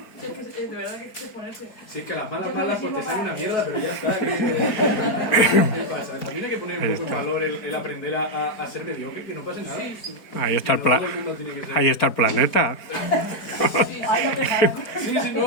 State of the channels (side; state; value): right; late; 4.5 ms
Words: Sí, es que de verdad que es que ponerse. Si es que las malas pues te sale una mierda, pero ya está. ¿Qué pasa? También hay que poner un poco en valor el aprender a ser mediocre, que no pase nada. Sí, sí. Ahí está el, No todo el mundo tiene que ser- ahí está el planeta. Sí, Sí,